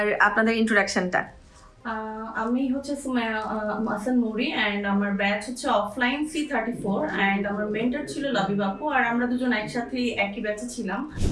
আপনাদের ইন্ট্রোডাকশনটা। আমি হচ্ছে সুমাইয়া হাসান নুরি অ্যান্ড আমার ব্যাচ হচ্ছে অফলাইন C34 অ্যান্ড আমার মেন্টর ছিল লাবিব আপু আর আমরা দুজন একসাথে একই ব্যাচে ছিলাম।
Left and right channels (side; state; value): both; identical; correlation 1.00